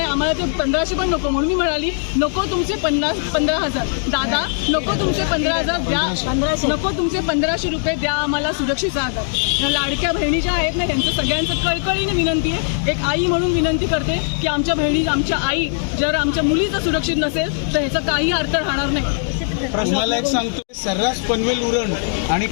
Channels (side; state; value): right; silent; digital silence